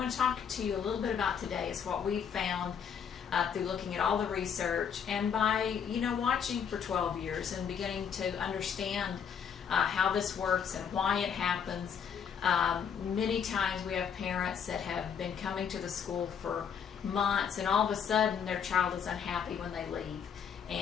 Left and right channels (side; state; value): right; quieter; 7.4 dB